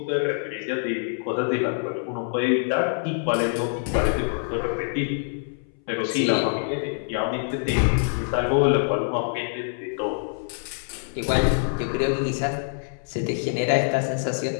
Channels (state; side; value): silent; right; 62 dB below the other